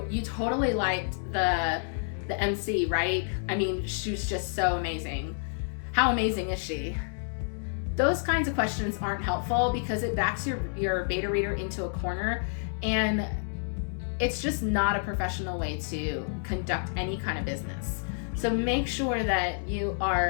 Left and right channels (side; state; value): right; silent; digital silence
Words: you totally liked the MC, right? I mean, she was just so amazing. How amazing is she? Those kinds of questions aren't helpful because it backs your beta reader into a corner, and it's just not a professional way to conduct any kind of business. So make sure that you